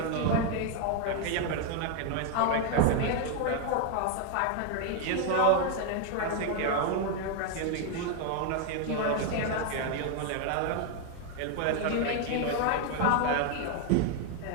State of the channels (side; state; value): both; different; correlation 0.00